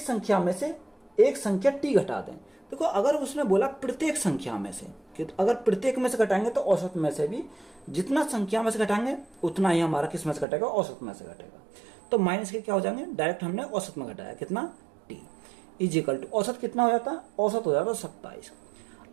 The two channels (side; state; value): left; drops out; at 10.5 s